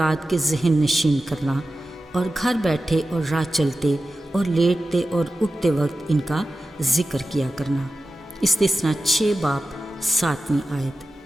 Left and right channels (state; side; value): normal; both; correlation 0.94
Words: کے ذہن نشین کرنا اور گھر بیٹھے اور راہ چلتے اور لیٹتے اور اٹھتے وقت ان کا ذکر کیا کرنا۔ استثنا 6 باب 7ویں